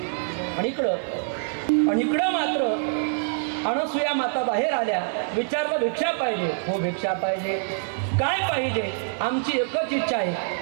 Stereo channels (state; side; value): silent; left; digital silence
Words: आणि इकडं मात्र अनसुया माता बाहेर आल्या. विचारलं भिक्षा पाहिजे? हो भिक्षा पाहिजे. काय पाहिजे? आमची एकच इच्छा आहे,